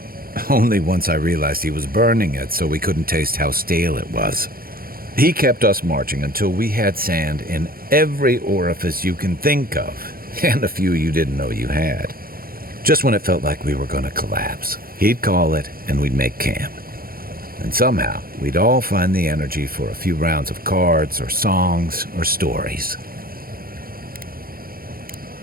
Only once I realized he was burning it so we couldn't taste how stale it was. He kept us marching until we had sand in every orifice you can think of, and a few you didn't know you had. Just when it felt like we were going to collapse, he'd call it and we'd make camp. And somehow, we'd all find the energy for a few rounds of cards or songs or stories.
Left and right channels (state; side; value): late; left; 0.43 ms